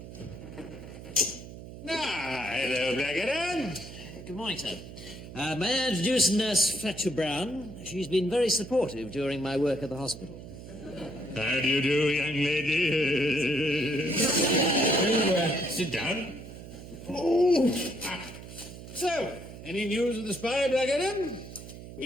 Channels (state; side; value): noise; right; hum, 13 dB below the sound